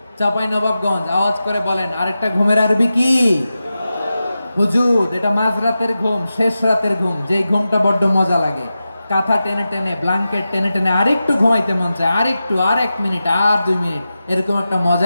চাঁপাইনবাবগঞ্জ আওয়াজ করে বলেন, আরেকটা ঘুমের আরবি কি? হুজুদ। এটা মাঝরাতের ঘুম, শেষ রাতের ঘুম, যেই ঘুমটা বড্ড মজা লাগে। কাঁথা টেনে টেনে, ব্ল্যাঙ্কেট টেনে টেনে আরেকটু ঘুমাইতে মন চায়, আরেকটু, আর 1 মিনিট, আর 2 মিনিট, এরকম একটা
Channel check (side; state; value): both; inverted; correlation -0.92